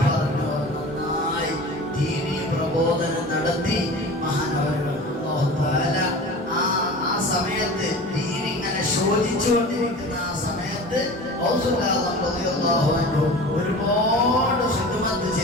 പറഞ്ഞോവർ, നന്നായി ദീനീ പ്രബോധനം നടത്തി മഹാനവരുകൾ. ആ സമയത്ത് ദീൻ ഇങ്ങനെ ശോധിച്ചുകൊണ്ടിരിക്കുന്ന ആ സമയത്ത് ഒരുപാട് ഖിദ്മത്ത്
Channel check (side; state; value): both; normal; correlation 0.37